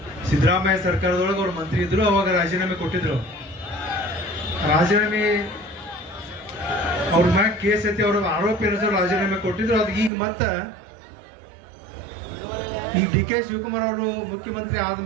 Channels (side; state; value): left; drops out; at 10.1 s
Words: ಸಿದ್ದರಾಮಯ್ಯ ಸರ್ಕಾರದೊಳಗೆ ಅವ್ರು ಮಂತ್ರಿ ಇದ್ರು, ಅವಾಗ ರಾಜೀನಾಮೆ ಕೊಟ್ಟಿದ್ರು. ರಾಜೀನಾಮೆ ಅವ್ರ ಮ್ಯಾಗ ಕೇಸ್ ಐತಿ, ಅವ್ರ ಆರೋಪಿ ಏನಿದ್ರು ರಾಜೀನಾಮೆ ಕೊಟ್ಟಿದ್ರು. ಅದು ಈಗ ಮತ್ತೆ ಈ DK ಶಿವಕುಮಾರ್ ಅವರು ಮುಖ್ಯಮಂತ್ರಿ